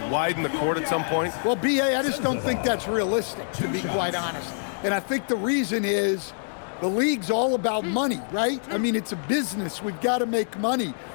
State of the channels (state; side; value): silent; right; digital silence